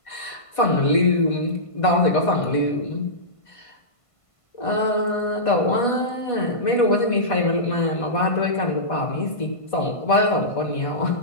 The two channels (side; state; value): right; late; 1.5 ms